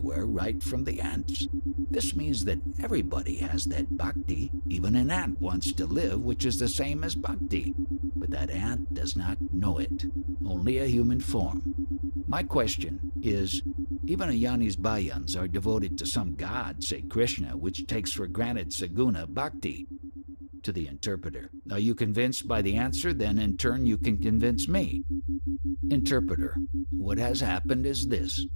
right from the ants. This means that everybody has that bhakti. Even an ant wants to live, which is the same as bhakti. But that ant does not know it, only a human form. My question is, even a Yani's bhajans are devoted to some god, say Krishna, which takes for granted saguna bhakti. To the interpreter, are you convinced by the answer? Then in turn you can convince me. Interpreter, what has happened is this.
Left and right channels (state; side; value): inverted; both; correlation -1.00